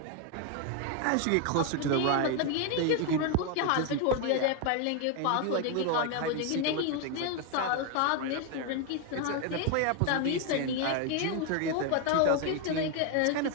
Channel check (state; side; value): different; both; correlation 0.01